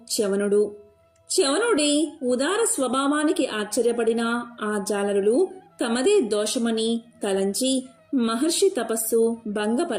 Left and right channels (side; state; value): both; identical; correlation 1.00